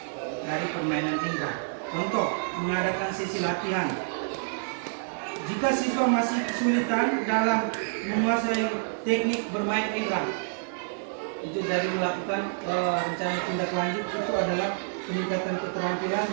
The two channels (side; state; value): left; silent; digital silence